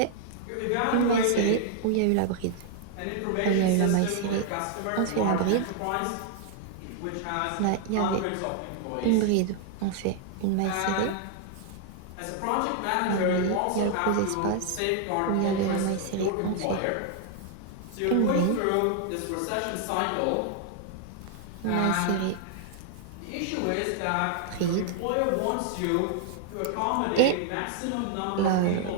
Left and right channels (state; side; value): different; both; correlation 0.00